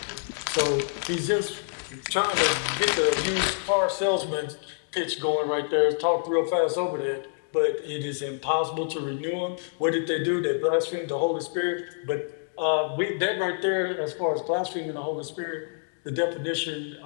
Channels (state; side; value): silent; right; 60 dB below the other